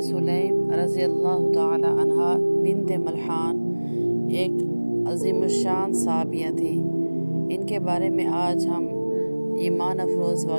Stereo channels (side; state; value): both; inverted; correlation -1.00